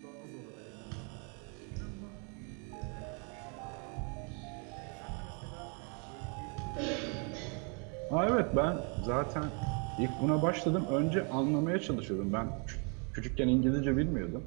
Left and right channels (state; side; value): quieter; left; 37.0 dB